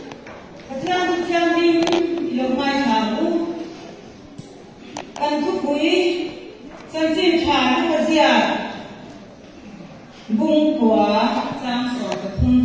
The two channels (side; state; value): both; identical; correlation 1.00